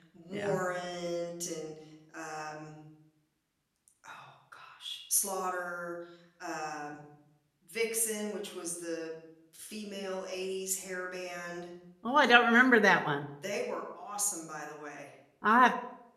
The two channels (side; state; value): both; identical; correlation 1.00